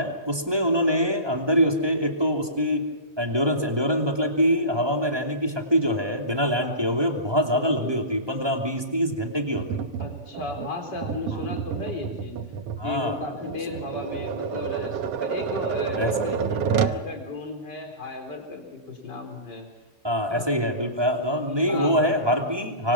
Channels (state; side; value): late; left; 1.2 ms